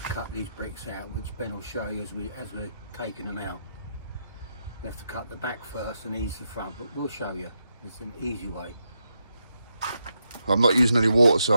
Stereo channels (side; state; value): both; inverted; correlation -0.84